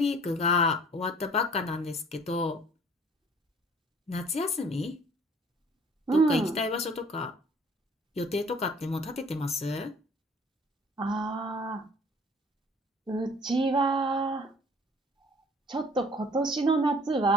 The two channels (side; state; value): both; normal; correlation 0.52